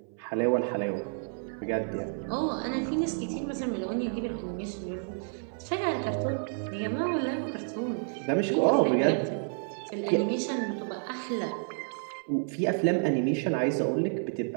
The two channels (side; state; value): left; silent; 58 dB below the other